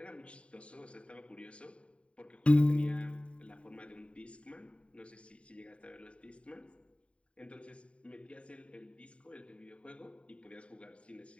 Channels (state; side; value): late; right; 0.061 ms